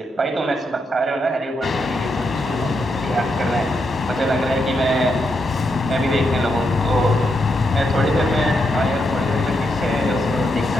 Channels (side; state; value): both; normal; correlation 0.82